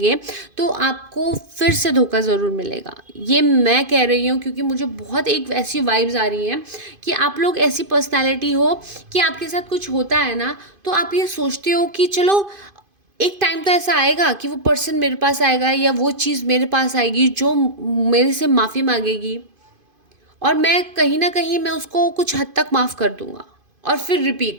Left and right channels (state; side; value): late; left; 2.5 ms